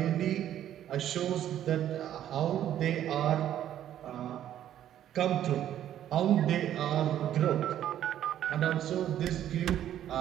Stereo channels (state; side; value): quieter; left; 11.3 dB